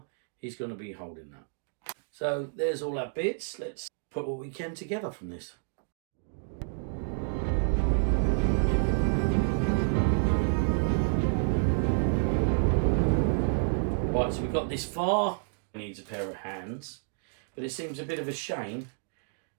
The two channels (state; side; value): silent; left; digital silence